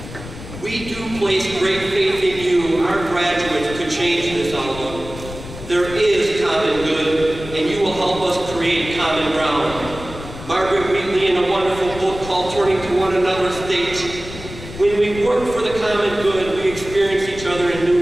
We do place great faith in you, our graduates, to change this outlook. There is common good, and you will help us create common ground. Margaret Wheatley, in a wonderful book called Turning to One Another, states, when we work for the common good, we experience each other in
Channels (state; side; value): noise; left; rumble, 13 dB below the sound